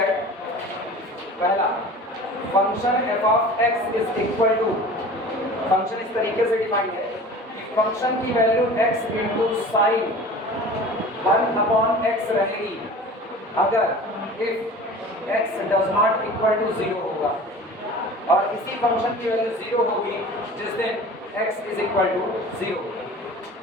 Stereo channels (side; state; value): both; normal; correlation 0.40